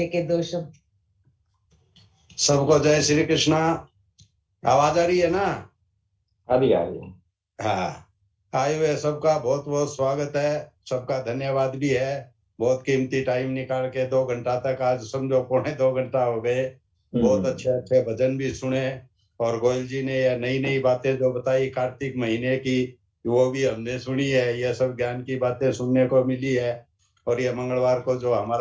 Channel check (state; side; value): identical; both; correlation 1.00